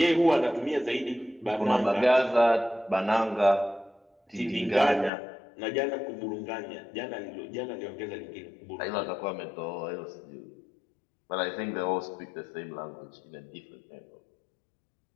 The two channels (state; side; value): drops out; right; at 5.1 s